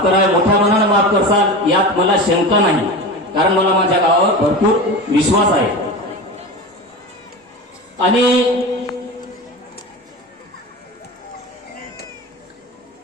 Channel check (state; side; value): normal; both; correlation 0.28